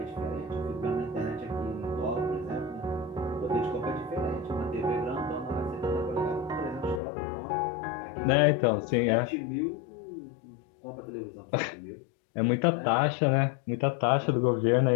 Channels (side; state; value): right; drops out; at 7.0 s